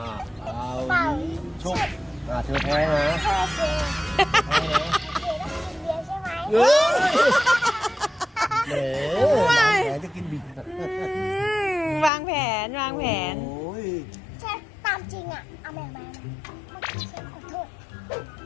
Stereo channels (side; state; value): right; drops out; at 12.1 s